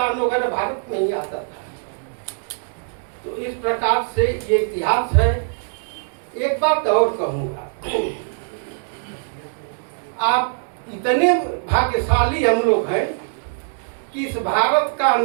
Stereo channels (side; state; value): left; silent; digital silence